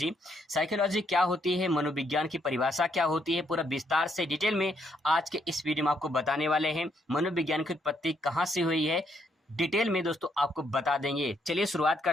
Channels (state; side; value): normal; both; correlation 0.73